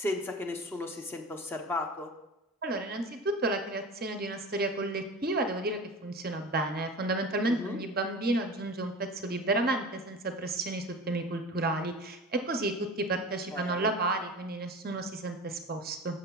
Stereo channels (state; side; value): normal; both; correlation 0.34